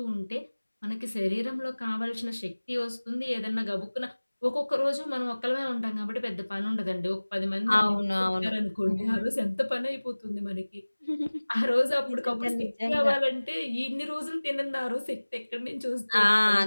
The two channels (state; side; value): inverted; both; correlation -1.00